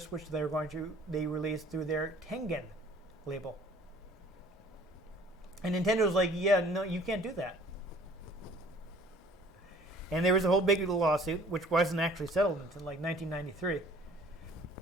which they released through their Tengen label. And Nintendo was like, "Yeah, no, you can't do that." And there was a whole big lawsuit, which wasn't actually settled until like 1993.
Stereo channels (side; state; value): both; normal; correlation 0.53